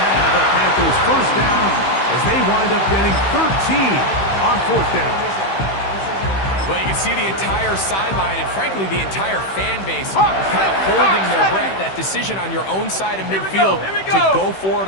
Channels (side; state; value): right; late; 15 ms